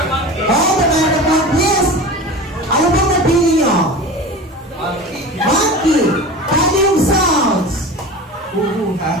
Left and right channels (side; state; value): both; normal; correlation 0.33